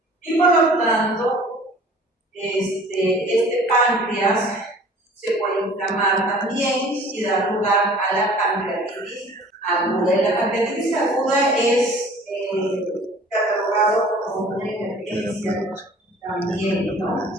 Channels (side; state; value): both; normal; correlation 0.48